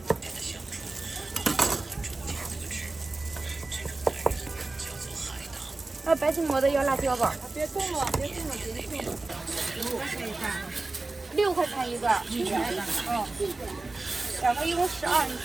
白吉馍的要辣椒吧？别动了，别动了，别动了。6块钱一个。嗯。2个1个12，你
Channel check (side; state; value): left; quieter; 3.3 dB